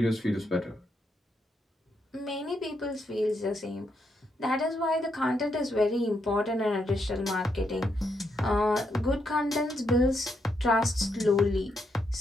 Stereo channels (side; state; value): both; normal; correlation 0.79